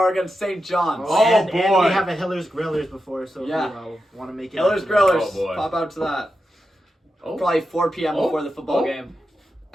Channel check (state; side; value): normal; both; correlation 0.89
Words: against St. John's. Oh, and boy. we have a Hiller's Grillers before, so Yeah. if you want to make it. Hiller's out to that. Grillers, Oh, boy. pop out to that. Oh. Probably 4 p.m. Oh. before the football Oh. game.